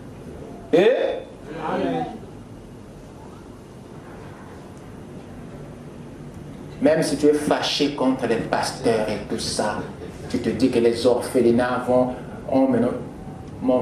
Et Amen. même si tu es fâché contre les pasteurs et tout ça, tu te dis que les orphelinats vont... Oh, mais non. Mon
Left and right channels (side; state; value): both; identical; correlation 1.00